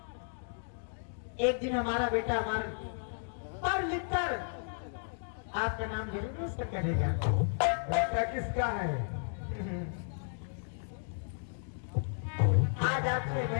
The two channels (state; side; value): silent; right; digital silence